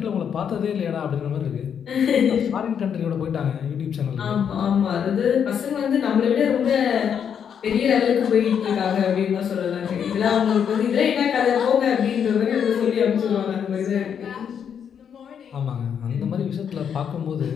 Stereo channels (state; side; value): quieter; right; 7.9 dB